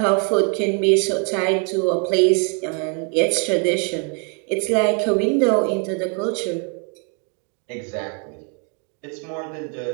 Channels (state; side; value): quieter; left; 36.9 dB